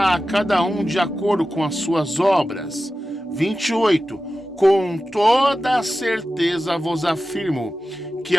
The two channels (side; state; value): both; normal; correlation 0.94